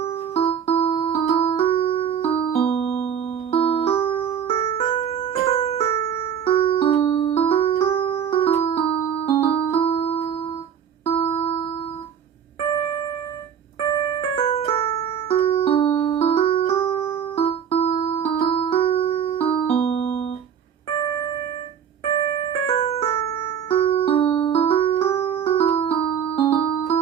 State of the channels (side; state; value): left; quieter; 8.3 dB